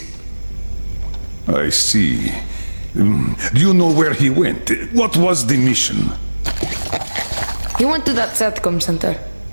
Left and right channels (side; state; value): both; inverted; correlation -1.00